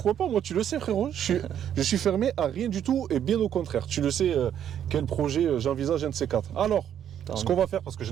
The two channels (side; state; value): left; quieter; 9.8 dB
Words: pas, moi tu le sais frérot, je suis fermé à rien du tout et bien au contraire. Tu le sais quel projet j'envisage un de ces quatre. Alors, ce qu'on va faire, parce que